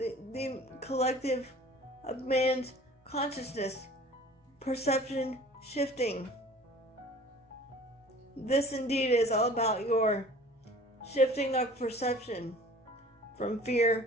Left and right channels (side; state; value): both; normal; correlation 0.46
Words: collective of man's consciousness, perception shifting. This indeed is all about your shifting of perception from